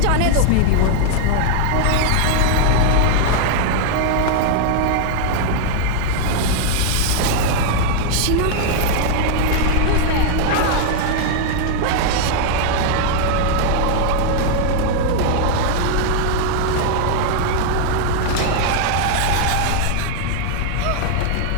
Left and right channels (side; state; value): both; different; correlation 0.00